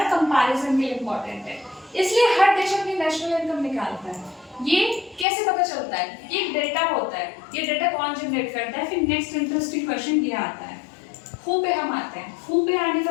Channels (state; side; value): drops out; right; at 5.2 s